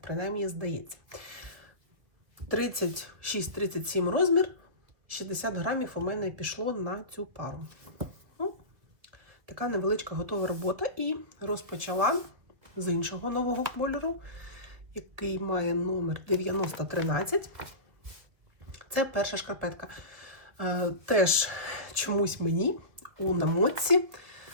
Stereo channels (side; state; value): left; late; 2.3 ms